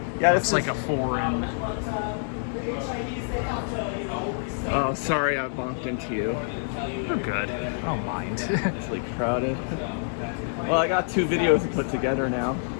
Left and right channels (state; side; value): silent; right; digital silence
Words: Yeah, It's like a foreign. Oh, sorry, I bumped into you. You're good. I don't mind. It's like crowded. Well, I got 2 videos to put together now.